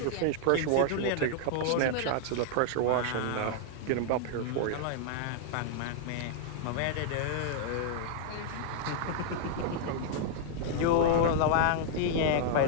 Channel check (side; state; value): both; different; correlation -0.01